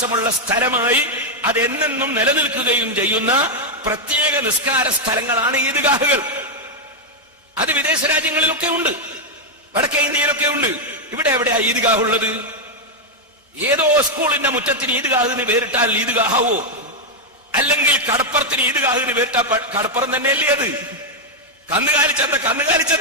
സ്ഥലമായി അതെന്നെന്നും നിലനിൽക്കുകയും ചെയ്യുന്ന പ്രത്യേക നിസ്കാര സ്ഥലങ്ങളാണ് ഈദ്ഗാഹുകൾ. അത് വിദേശ രാജ്യങ്ങളിലൊക്കെ ഉണ്ട്, വടക്കേ ഇന്ത്യയിലൊക്കെ ഉണ്ട്. ഇവിടെ എവിടെയാ ഈദ്ഗാഹ് ഉള്ളത്? ഏതോ സ്കൂളിന്റെ മുറ്റത്തിന് ഈദ്ഗാഹിന് പേരിട്ടാൽ ഈദ്ഗാഹാവോ? അല്ലെങ്കിൽ കടപ്പുറത്തിന് ഈദ്ഗാഹിന് പേരിട്ടാൽ കടപ്പുറം തന്നെയല്ലേ അത്? കന്നുകാലി ചന്ത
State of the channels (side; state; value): both; normal; correlation 0.01